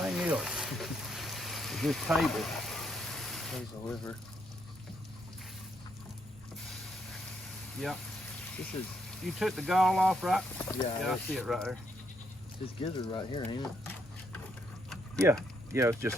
else. Is this table. There's the liver. Yep. This is, You took the gall off, right? yeah, I see it right there. this gizzard right here, ain't it? Yeah, it's just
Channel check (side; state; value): both; normal; correlation 0.75